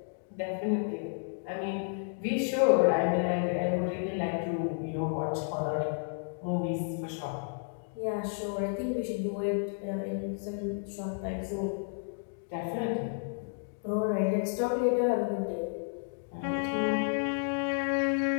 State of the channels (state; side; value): silent; right; digital silence